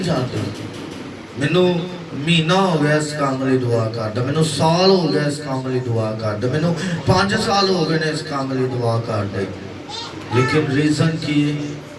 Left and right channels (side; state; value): both; identical; correlation 1.00